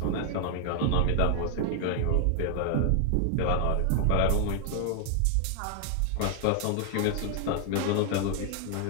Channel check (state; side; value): different; both; correlation 0.00